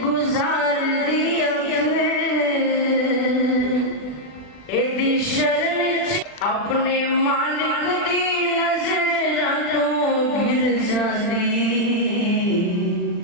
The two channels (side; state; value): right; late; 40 ms